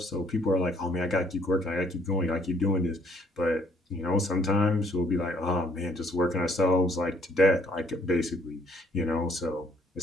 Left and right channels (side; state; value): both; normal; correlation 0.64